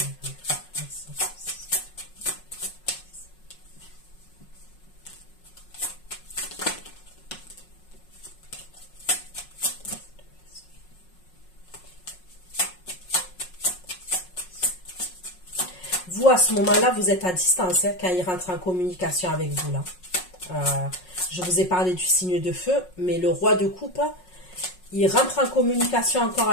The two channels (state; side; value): late; right; 5.5 ms